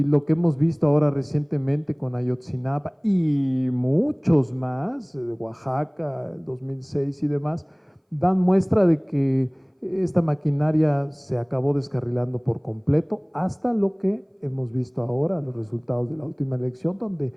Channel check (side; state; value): both; identical; correlation 1.00